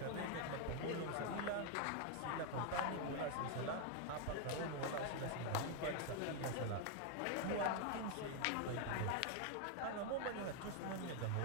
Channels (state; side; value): different; both; correlation 0.01